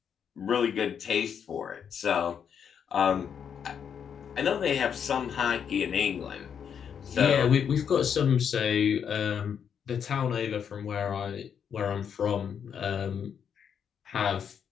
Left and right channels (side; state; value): right; quieter; 7.7 dB